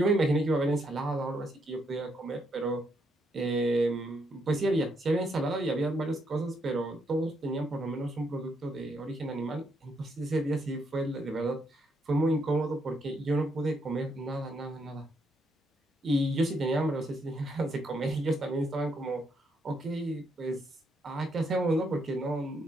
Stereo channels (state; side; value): normal; both; correlation 0.76